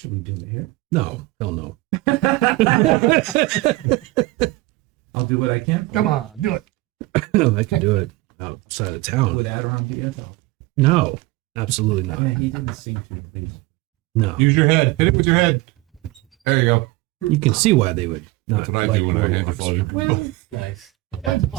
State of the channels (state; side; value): quieter; left; 20.6 dB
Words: we do it here? No, hell no. I'll do what I can. Come on, do it. I can do it outside of town. Would Adiron be it though? No, absolutely Yeah, not. he didn't seem to at least. No. Use your head. Hit it with your head. There you go. You can see why they would. That's what I do when I hand the phone. Well, Nice.